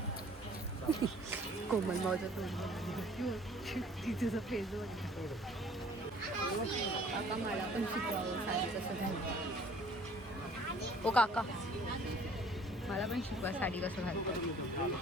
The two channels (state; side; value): normal; both; correlation 0.54